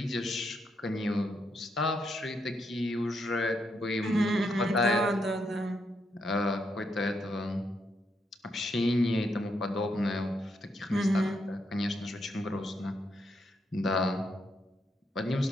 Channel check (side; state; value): both; normal; correlation 0.79